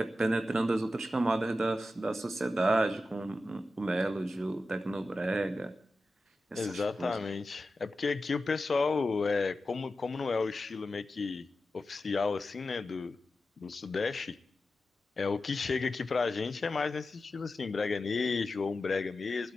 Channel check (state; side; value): normal; both; correlation 0.92